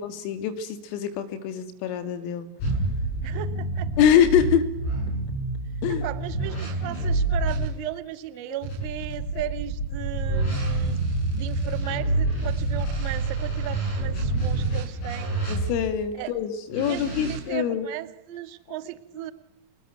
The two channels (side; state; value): right; late; 29 ms